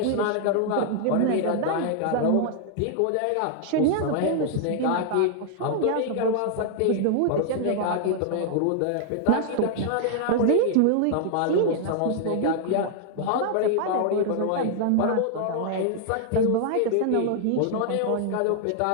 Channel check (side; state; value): both; different; correlation 0.00